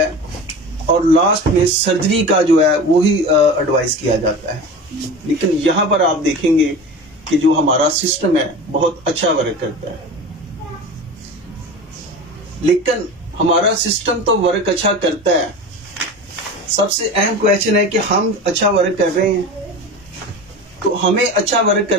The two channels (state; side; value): normal; both; correlation 0.31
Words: और लास्ट में सर्जरी का जो है वो ही एडवाइस किया जाता है। लेकिन यहाँ पर आप देखेंगे कि जो हमारा सिस्टम है बहुत अच्छा वर्क करता है, लेकिन हमारा सिस्टम तो वर्क अच्छा करता है, सबसे अहम क्वेश्चन है कि हम अच्छा वर्क कर रहे हैं। तो हमें अच्छा वर्क